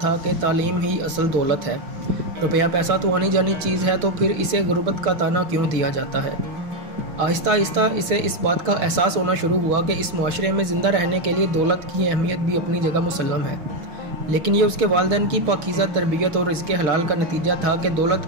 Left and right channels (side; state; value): left; late; 6.2 ms